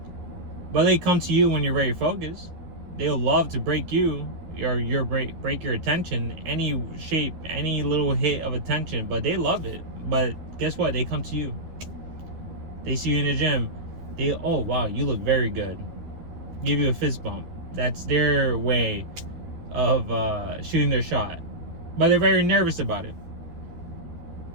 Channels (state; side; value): late; left; 12 ms